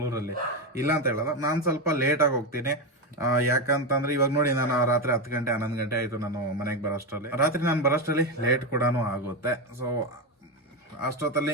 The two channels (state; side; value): normal; both; correlation 0.12